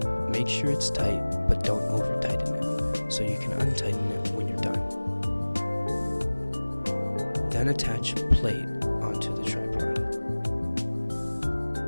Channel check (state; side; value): inverted; both; correlation -1.00